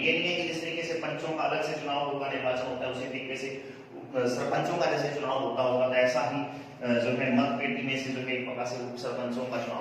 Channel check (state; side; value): identical; both; correlation 1.00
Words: नहीं है कि जिस तरीके से पंचों का अलग से चुनाव होगा, निर्वाचन होता है, उसी तरीके से सरपंचों का जैसे चुनाव होता होगा, तो ऐसा ही जो है मत पेटी में से जो है एक प्रकार से उप सरपंचों का